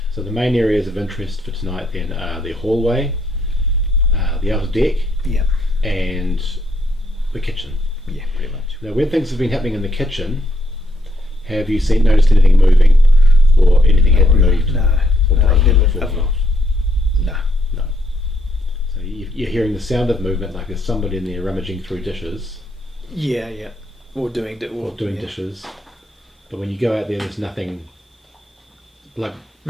So the main areas of interest for tonight then are the hallway, the outer deck, and the kitchen. Yeah, pretty much. Now, when things have been happening in the kitchen, have you noticed anything moving, or anything having moved? No. Or broken or fallen off? No. So you're hearing the sound of movement, like there's somebody in there rummaging through dishes. Yeah. Or doing dishes. But when you go out there, there's nothing. Like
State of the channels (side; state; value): both; normal; correlation 0.73